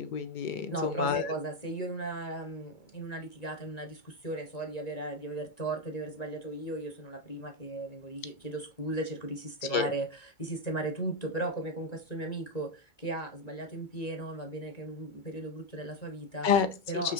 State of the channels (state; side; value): late; right; 2.2 ms